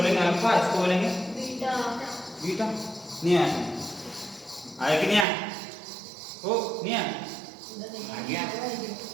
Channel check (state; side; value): drops out; left; at 5.2 s